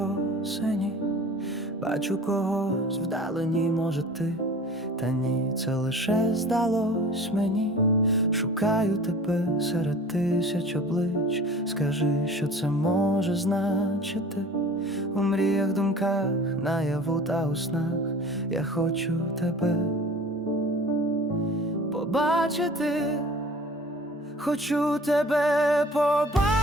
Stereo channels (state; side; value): normal; both; correlation 0.43